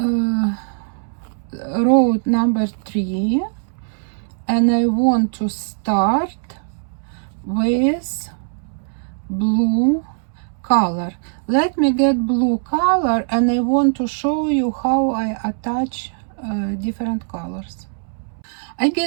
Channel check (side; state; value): left; silent; 65 dB below the other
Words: number 3, and I want to start with blue color. Let me get blue color, and I want to show you how I attach different colors. I